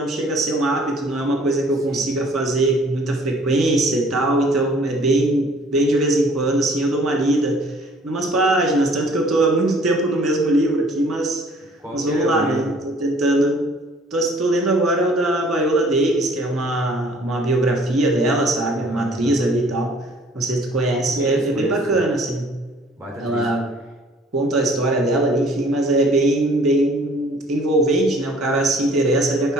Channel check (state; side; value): normal; both; correlation 0.56